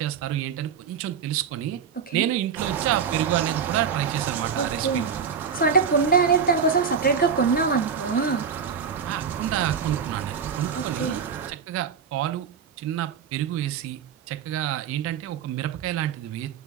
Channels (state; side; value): quieter; left; 6.8 dB